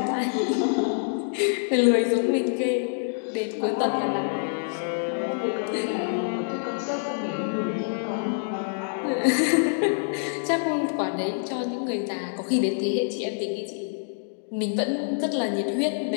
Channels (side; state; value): right; silent; digital silence